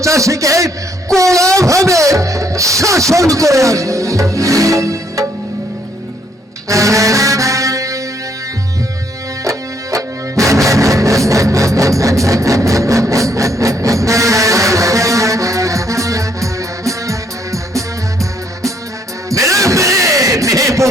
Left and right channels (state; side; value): normal; both; correlation 0.70